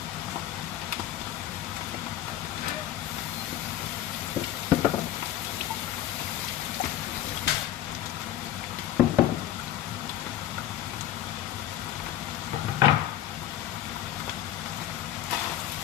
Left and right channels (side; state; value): right; quieter; 12.4 dB